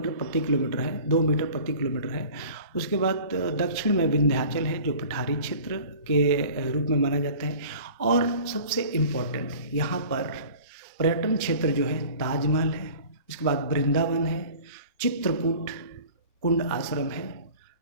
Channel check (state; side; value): inverted; both; correlation -0.44